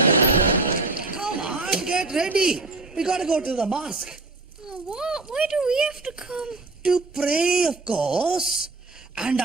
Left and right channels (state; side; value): quieter; left; 3.4 dB